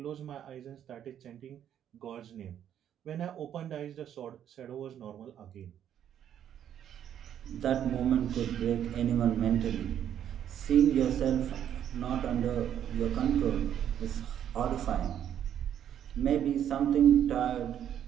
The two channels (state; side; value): quieter; left; 10.0 dB